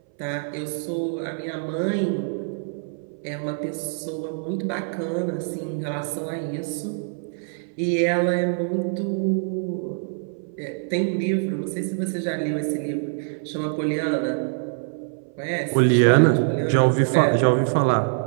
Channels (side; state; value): left; silent; 58 dB below the other